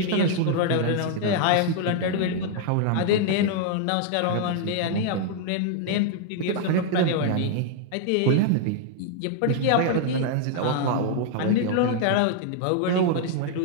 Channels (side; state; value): both; different; correlation 0.00